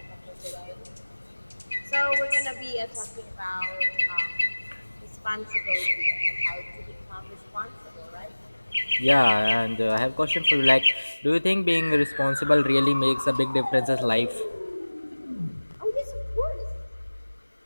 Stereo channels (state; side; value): inverted; both; correlation -1.00